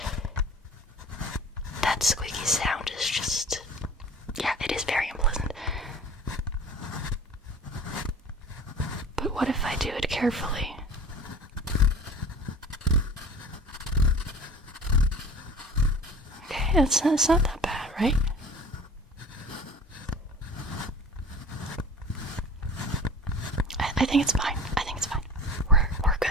that squeaky sound is just, yeah, it is very unpleasant. But what if I do it carefully? Okay, it's not that bad, right? I think it's fine. We're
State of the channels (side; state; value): both; normal; correlation 0.41